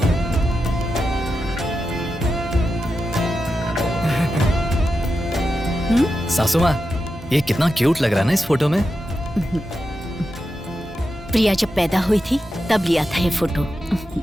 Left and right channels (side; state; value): both; normal; correlation 0.89